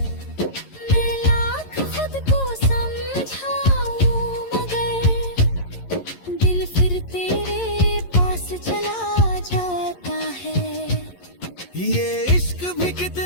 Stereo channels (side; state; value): right; late; 11 ms